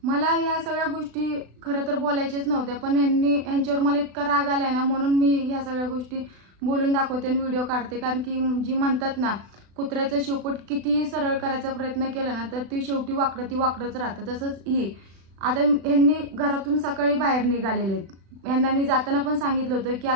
मला ह्या सगळ्या गोष्टी खरं तर बोलायच्याच नव्हत्या, पण ह्यांच्यावर मला इतका राग आलाय ना, म्हणून मी ह्या सगळ्या गोष्टी बोलून दाखवते आणि व्हिडिओ काढते. कारण की जी म्हणतात ना, कुत्र्याचं शेपूट कितीही सरळ करायचा प्रयत्न केला ना, तर ती शेवटी वाकडंच राहतं. तसंच ही आता ह्यांनी घरातून सकाळी बाहेर निघालेले आहेत. यांना मी जाताना पण सांगितलं होतं की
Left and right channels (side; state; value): left; late; 36 ms